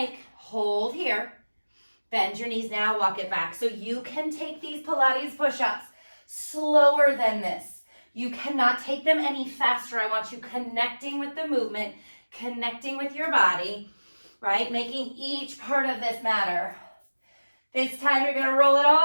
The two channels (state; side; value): inverted; both; correlation -1.00